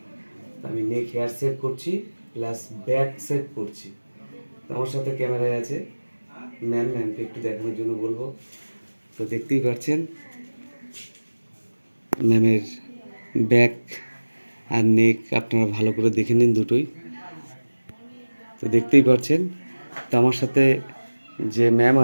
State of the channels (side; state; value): both; inverted; correlation -1.00